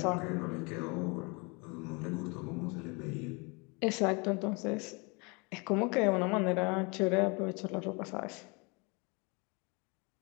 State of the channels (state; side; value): quieter; right; 30.1 dB